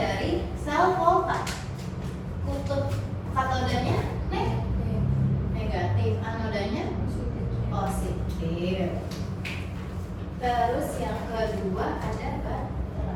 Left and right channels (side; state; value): both; identical; correlation 1.00